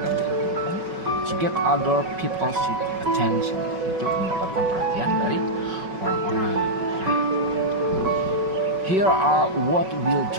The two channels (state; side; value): late; left; 5.4 ms